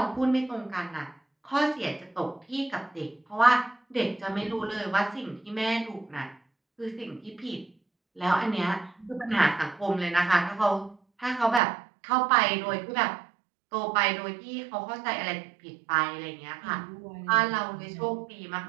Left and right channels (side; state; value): left; drops out; at 11.6 s